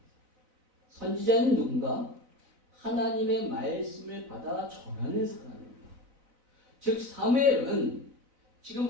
선지자는 누군가? 하나님의 말씀을 받아 전하는 사람입니다. 즉 사무엘은 지금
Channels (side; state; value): left; late; 4.0 ms